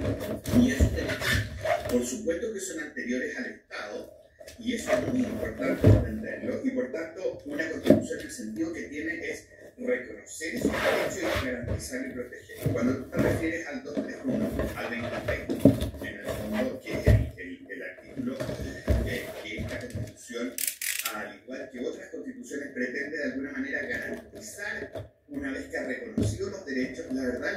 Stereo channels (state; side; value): identical; both; correlation 1.00